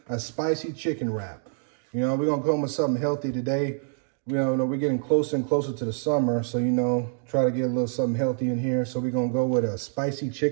a spicy chicken wrap. You know, we're going to come with something healthy today. We're getting closer and closer to the summer, so, try to get a little something healthy in here. So we're going to go with a spicy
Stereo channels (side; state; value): left; silent; digital silence